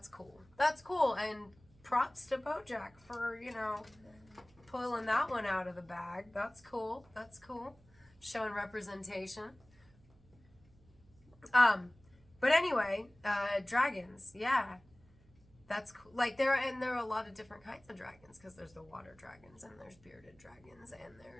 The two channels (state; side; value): noise; right; hum, 28 dB below the sound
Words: cool. That's cool, and props to BoJack for, pulling that one out of the bag. That's cool. That's cool. Showing representation. But anyway, dragons, yeah. That's cool. Like, there are a lot of different kinds of dragons, because there's the water dragons, and there's bearded dragons, and